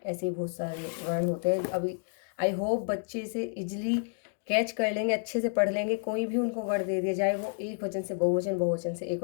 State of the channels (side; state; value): right; silent; 56 dB below the other